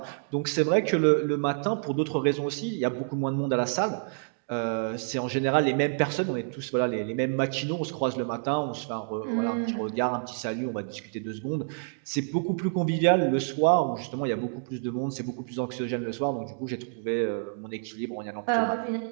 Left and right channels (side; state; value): left; silent; digital silence